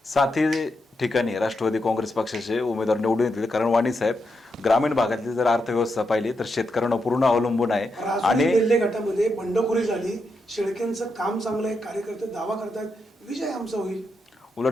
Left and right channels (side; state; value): both; normal; correlation 0.84